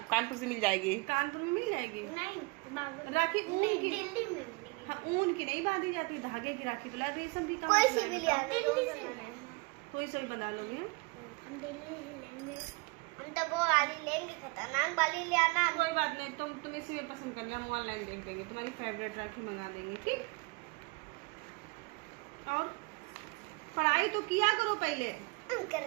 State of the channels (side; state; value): left; quieter; 28.2 dB